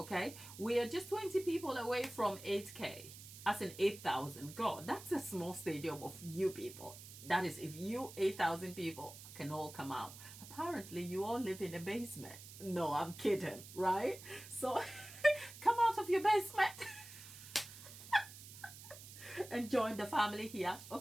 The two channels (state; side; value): noise; right; hiss, 15 dB below the sound